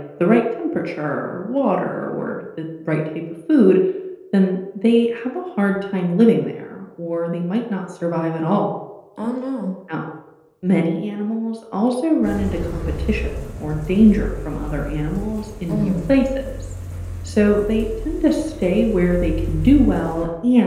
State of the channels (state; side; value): identical; both; correlation 1.00